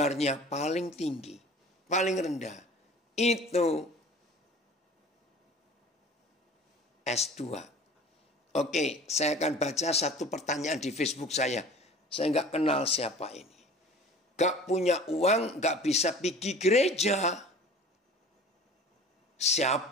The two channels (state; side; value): normal; both; correlation 0.43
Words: paling tinggi. Paling rendah. Itu S2. Oke, saya akan baca satu pertanyaan di Facebook saya. Saya nggak kenal siapa ini. Gak punya uang, gak bisa pergi gereja.